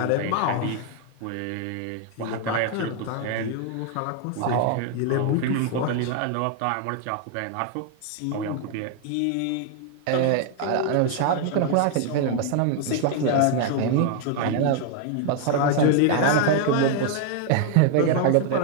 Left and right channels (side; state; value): both; different; correlation 0.00